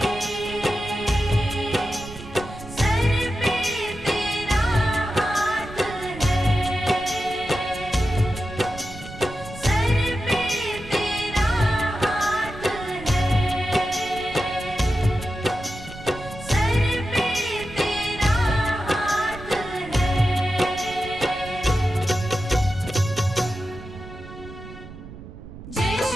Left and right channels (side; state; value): right; noise; rumble, 14 dB below the sound